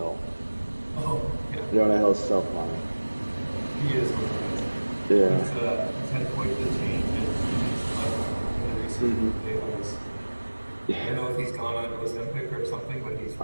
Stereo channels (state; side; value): inverted; both; correlation -1.00